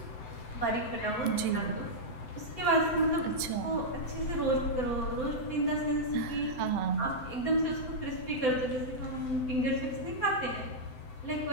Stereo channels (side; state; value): right; late; 7.8 ms